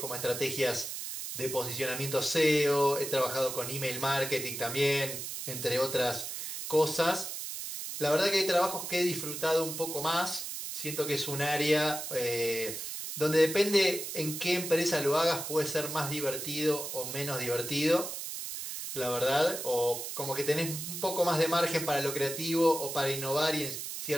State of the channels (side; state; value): right; noise; hiss, 6 dB below the sound